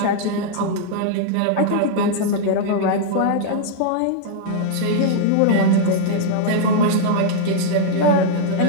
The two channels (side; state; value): both; different; correlation -0.01